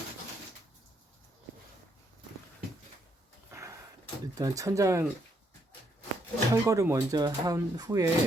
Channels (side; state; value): both; normal; correlation 0.74